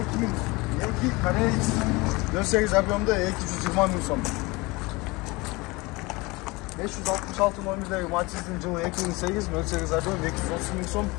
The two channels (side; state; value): right; quieter; 23.9 dB